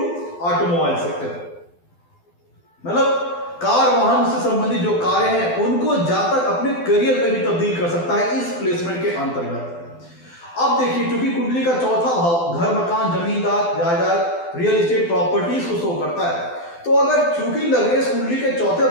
automobile sector, मतलब कार वाहन से संबंधित जो कार्य हैं उनको जातक अपने करियर में भी तब्दील कर सकता है इस प्लेसमेंट के अंतर्गत। अब देखिए, क्योंकि कुंडली का चौथा भाव घर मकान जमींदार जायदाद रियल एस्टेट प्रॉपर्टीज को शो करता है, तो अगर चूंकि लग्नेश कुंडली के चौथे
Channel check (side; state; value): right; late; 12 ms